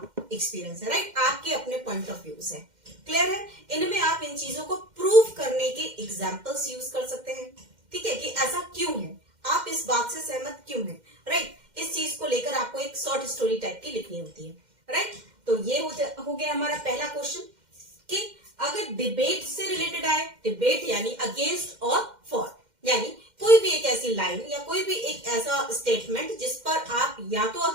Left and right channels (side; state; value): left; late; 2.1 ms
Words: एक्सपीरियंस है, राइट, आपके अपने पॉइंट ऑफ व्यूज है। क्लियर है? इनमें आप इन चीजों को प्रूव करने के एग्जाम्पल्स यूज कर सकते हैं, ठीक है, कि ऐसा क्यों है, आप इस बात से सहमत क्यों हैं, राइट। इस चीज को लेकर आपको एक शॉर्ट स्टोरी टाइप की लिखनी होती है, राइट। तो ये हो गया हमारा पहला क्वेश्चन कि अगर डिबेट से रिलेटेड आए, डिबेट यानी अगेंस्ट और फॉर, यानी कोई भी एक ऐसी लाइन या कोई भी एक ऐसा स्टेटमेंट जिस पर आप या तो